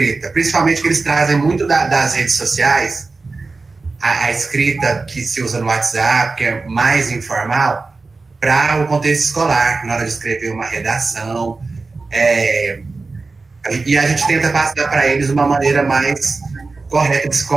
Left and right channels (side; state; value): left; quieter; 3.9 dB